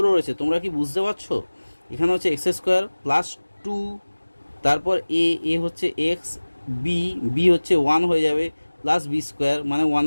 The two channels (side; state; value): both; inverted; correlation -1.00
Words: রয়েছে, তোমরা কি বুঝতে পারছো? এখানে হচ্ছে এক্স স্কোয়ার প্লাস 2, তারপর এ হচ্ছে এক্স, বি হচ্ছে 1 হয়ে যাবে, প্লাস বি স্কোয়ার মানে